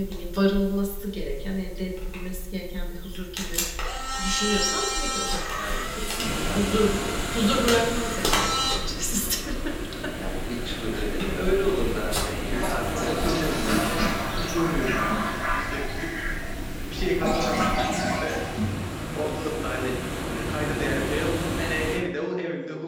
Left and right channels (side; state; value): both; identical; correlation 1.00